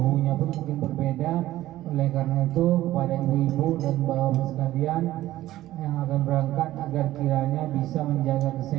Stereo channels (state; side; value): quieter; left; 15.0 dB